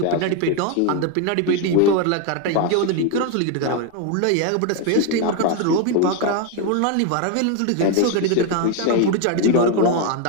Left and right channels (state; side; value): different; both; correlation 0.01